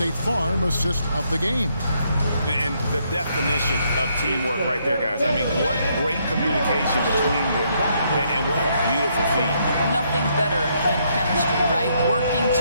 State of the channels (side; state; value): both; inverted; correlation -0.73